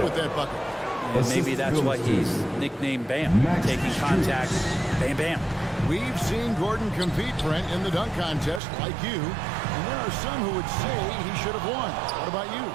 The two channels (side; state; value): left; drops out; at 8.6 s